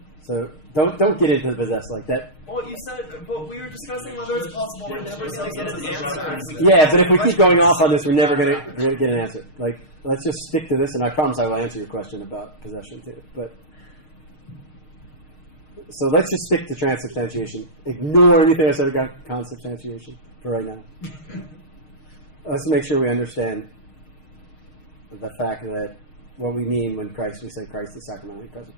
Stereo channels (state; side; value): late; right; 6.5 ms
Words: So don't get into the possess like that. Well, you said, but we were discussing whether it's possible. We're never going to get an answer. Yeah, but if we keep going off on this, we're never going to get an answer. Like, let's just stick to this, and I promise I will answer your question about possession too. But so let's just stick to transubstantiation. Ignore anything I said about consubstantiation for right now. Let's make sure we understand the fact that what we mean when we say Christ is sacramentally present.